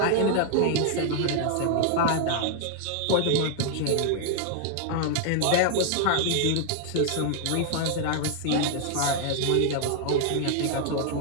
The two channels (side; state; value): both; different; correlation 0.00